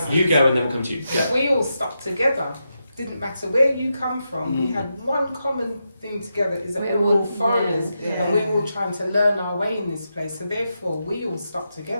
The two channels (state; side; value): inverted; both; correlation -0.86